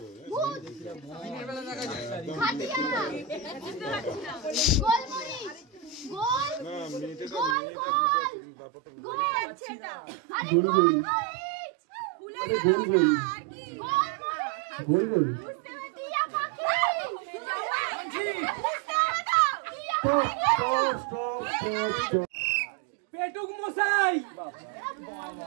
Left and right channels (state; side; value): drops out; left; at 7.6 s